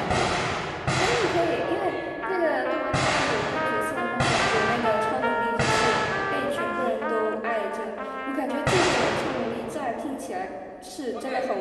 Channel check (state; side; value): identical; both; correlation 1.00